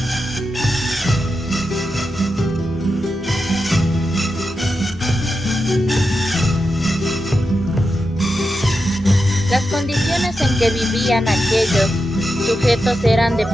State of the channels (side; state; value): both; normal; correlation 0.89